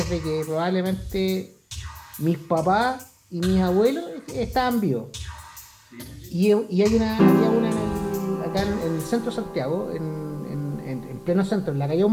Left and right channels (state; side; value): identical; both; correlation 1.00